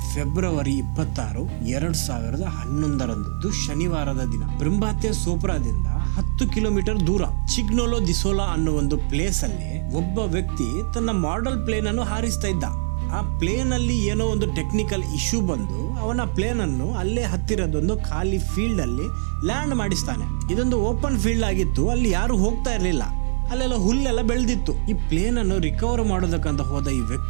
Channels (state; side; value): silent; left; digital silence